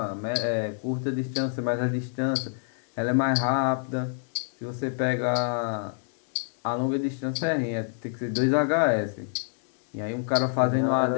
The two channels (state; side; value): silent; right; 60 dB below the other